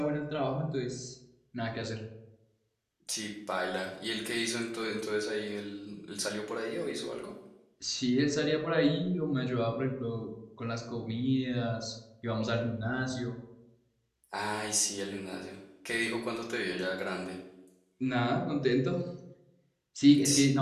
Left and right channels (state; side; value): identical; both; correlation 1.00